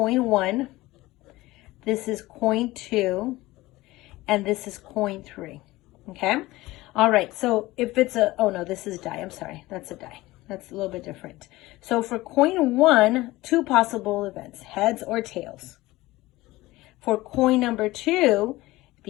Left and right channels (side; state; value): right; quieter; 18.9 dB